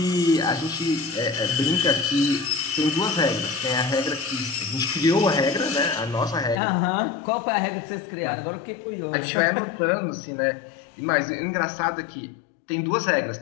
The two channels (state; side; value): drops out; right; at 6.6 s